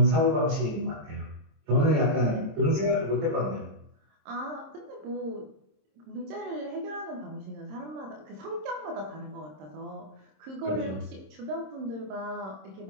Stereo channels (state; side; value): late; left; 26 ms